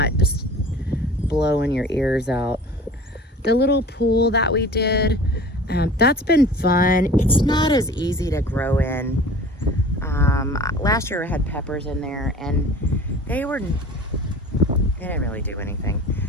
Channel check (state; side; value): normal; both; correlation 0.42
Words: just blowing your ears out. The little pool that we did, that's been fun. It's not as easy to grow in. Last year I had peppers in there, and they didn't really do anything.